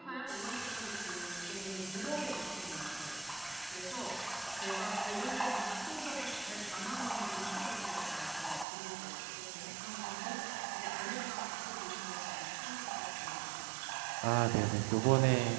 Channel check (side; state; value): left; drops out; at 8.7 s